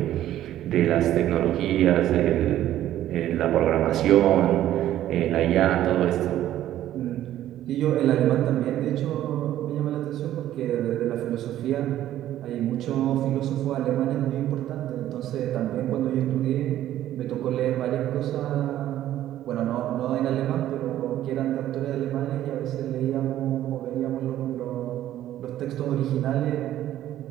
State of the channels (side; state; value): left; quieter; 12.8 dB